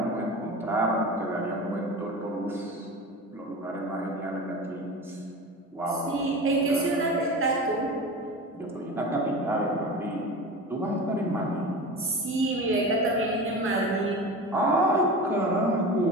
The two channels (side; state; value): both; normal; correlation 0.30